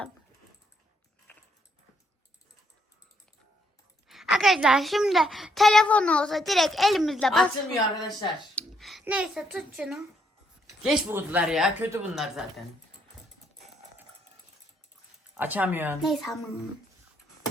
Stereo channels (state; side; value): normal; both; correlation 0.72